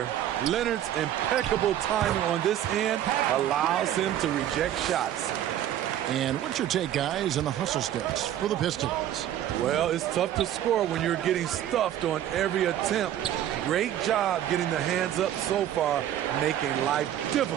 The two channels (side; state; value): left; quieter; 11.5 dB